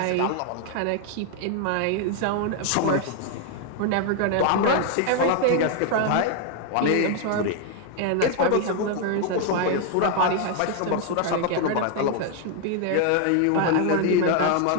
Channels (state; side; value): different; both; correlation 0.00